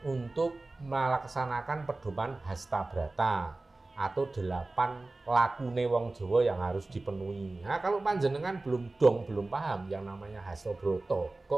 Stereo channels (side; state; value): left; quieter; 3.1 dB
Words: untuk melaksanakan pedoman Hastabrata atau 8 lakune wong Jawa yang harus dipenuhi. Nah, kalau panjenengan belum paham yang namanya Hastabrata,